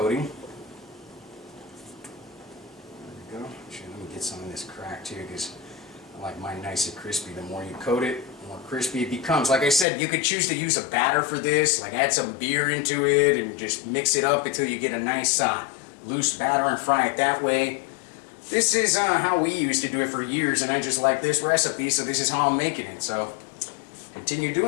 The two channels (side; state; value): right; drops out; at 9.9 s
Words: There we go. Actually, let me get some of this cracked too, because I like mine nice and crispy. The more you coat it, the more crispy it becomes. Like I said, you could choose to use a batter for this, like add some beer into it and just mix it up until you get a nice loose batter and fry it that way. This is how we used to do it for years, and I just like this recipe, so this is how I'm making it. So continue